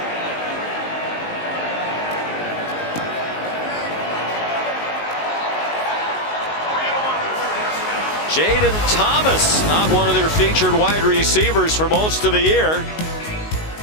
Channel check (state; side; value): late; right; 19 ms